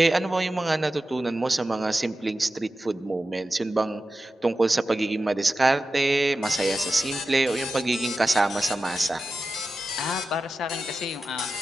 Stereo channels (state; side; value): normal; both; correlation 0.93